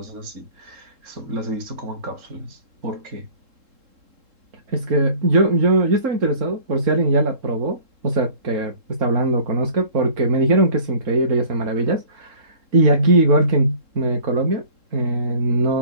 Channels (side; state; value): left; late; 3.7 ms